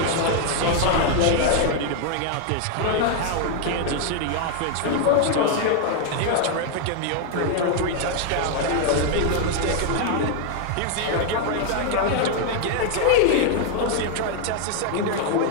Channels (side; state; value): both; different; correlation 0.00